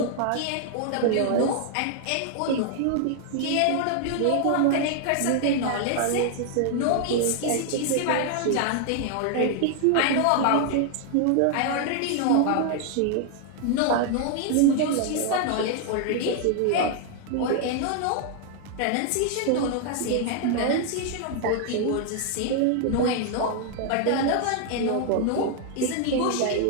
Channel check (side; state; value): both; different; correlation 0.00